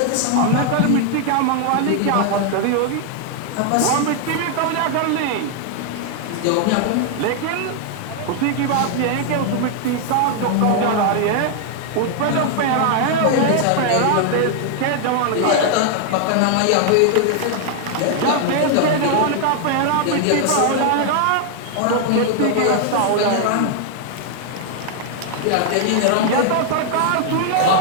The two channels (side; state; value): both; different; correlation 0.00